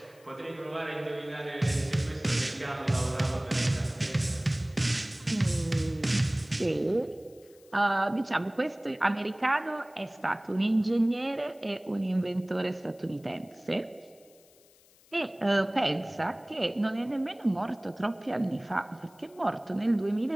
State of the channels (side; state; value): left; noise; hiss, 28 dB below the sound